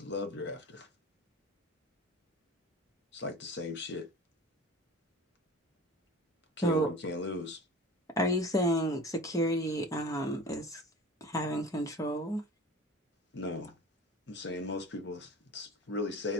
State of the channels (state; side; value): normal; both; correlation 0.38